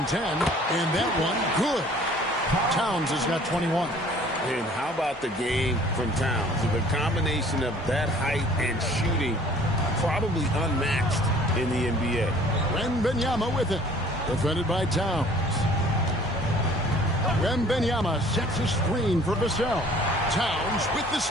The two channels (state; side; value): normal; both; correlation 0.53